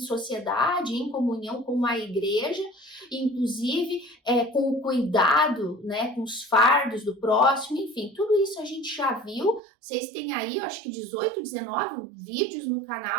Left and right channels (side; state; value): left; drops out; at 9.6 s